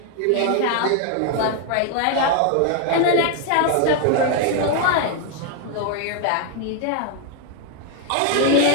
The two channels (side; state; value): both; different; correlation 0.00